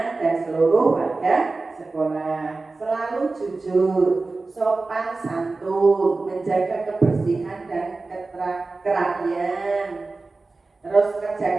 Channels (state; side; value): quieter; left; 3.6 dB